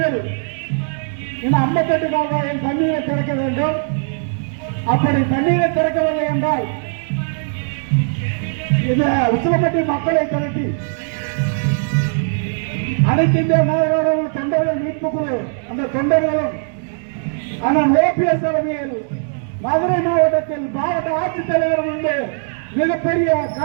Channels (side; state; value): left; silent; digital silence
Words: இந்த 58 கால்வாயில் தண்ணீரை திறக்க வேண்டும். அப்படி தண்ணீரை திறக்கவில்லை என்றால் இந்த உசிலம்பட்டி மக்களை திரட்டி அனைத்து இந்திய நாயகர்கள் தொண்டர்கள் மீட்பு குழு அந்த தொண்டர்களும் அண்ணன் ஓபிஎஸ் தலைமையில் மதுரை மாவட்டத்தில் மாவட்ட ஆட்சித்தலைவர் முன்பு மிகப்பெரிய